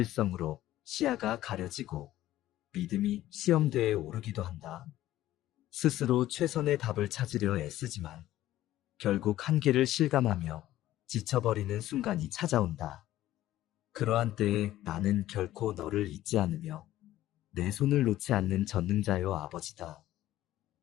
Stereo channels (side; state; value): right; quieter; 14.3 dB